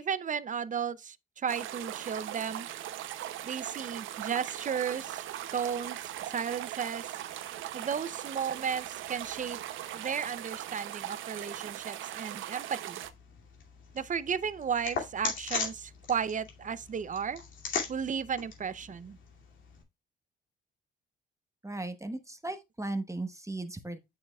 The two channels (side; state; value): left; quieter; 5.5 dB